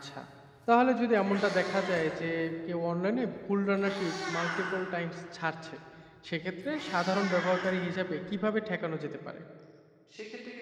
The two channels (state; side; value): identical; both; correlation 1.00